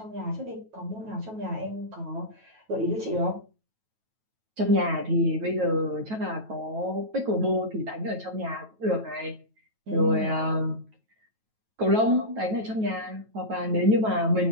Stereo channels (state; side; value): late; left; 9.2 ms